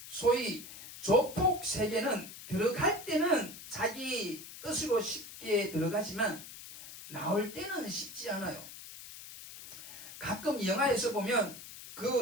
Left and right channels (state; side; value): noise; left; hiss, 14 dB below the sound